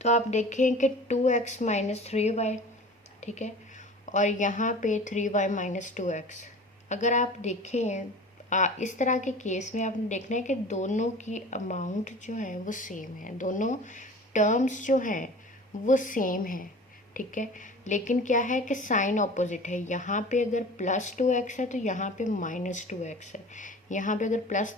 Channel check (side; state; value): both; normal; correlation 0.40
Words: आप देखें कि 2x - 3y, ठीक है, और यहाँ पे 3y - 2x। अगर आप देखें इस तरह के केस में आपने देखना है कि दोनों की अमाउंट जो है वो सेम है, दोनों टर्म्स जो हैं वो सेम है, ठीक है। लेकिन क्या है कि साइन ऑपोजिट है। यहाँ पे अगर +2x है तो यहाँ पे -2x है, यहाँ पे अगर